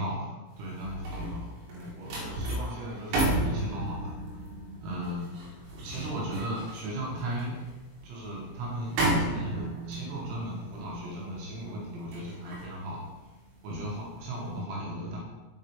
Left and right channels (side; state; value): left; late; 17 ms